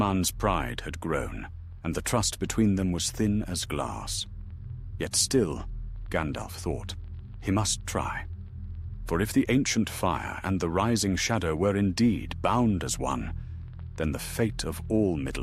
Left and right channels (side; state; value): both; identical; correlation 1.00